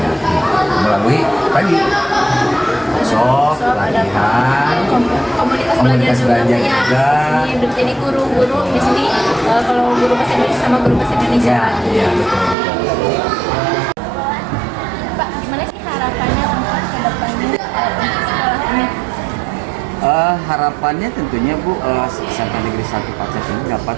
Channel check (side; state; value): left; drops out; at 12.6 s